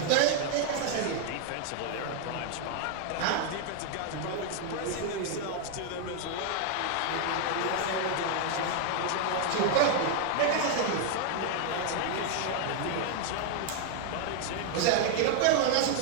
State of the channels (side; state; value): both; different; correlation 0.00